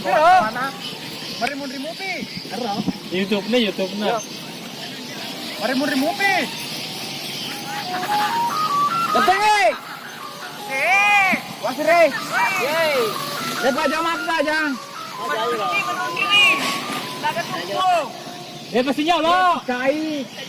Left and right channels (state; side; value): identical; both; correlation 1.00